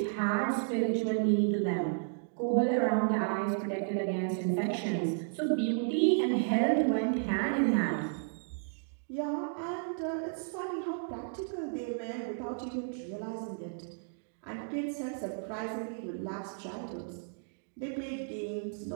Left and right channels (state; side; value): silent; left; digital silence